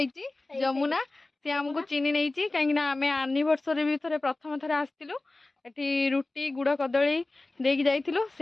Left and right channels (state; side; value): quieter; right; 3.0 dB